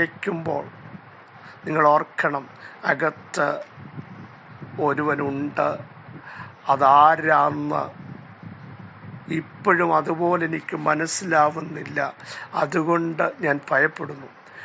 നിങ്ങൾ ഓർക്കണം, അകത്ത് ഒരുവനുണ്ട്. അതാരാന്ന് ഇപ്പോഴും അതുപോലെ എനിക്ക് മനസ്സിലാവുന്നില്ല. അതുകൊണ്ട് ഞാൻ ഭയപ്പെടുന്നു.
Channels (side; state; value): both; identical; correlation 1.00